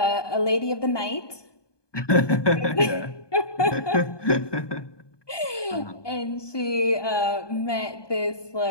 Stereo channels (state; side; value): late; right; 1.2 ms